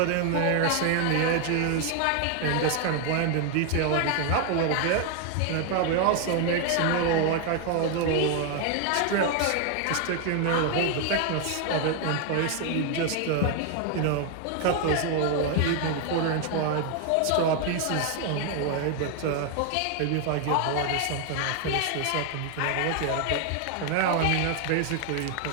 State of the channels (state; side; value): different; both; correlation 0.00